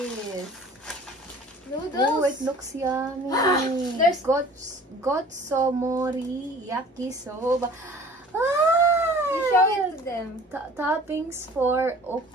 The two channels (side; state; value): both; normal; correlation 0.48